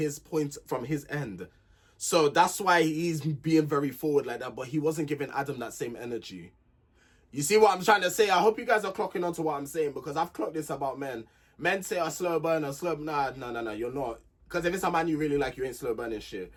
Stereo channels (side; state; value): both; identical; correlation 1.00